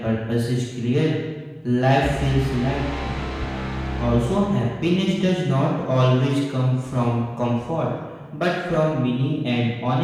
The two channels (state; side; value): identical; both; correlation 1.00